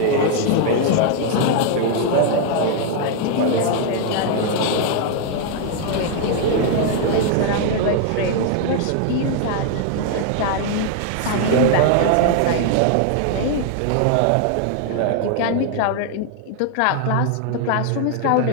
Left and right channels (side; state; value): both; different; correlation 0.00